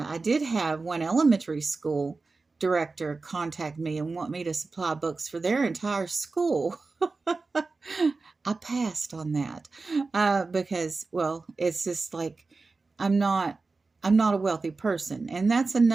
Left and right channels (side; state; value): left; quieter; 3.9 dB